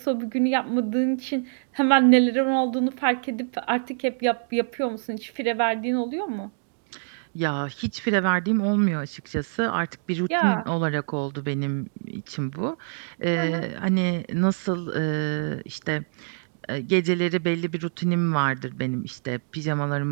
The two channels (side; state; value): left; silent; digital silence